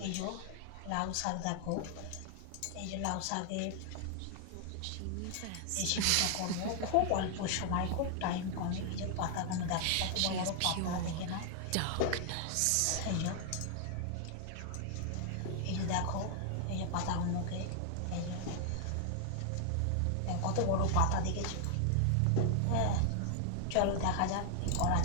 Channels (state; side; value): different; both; correlation 0.00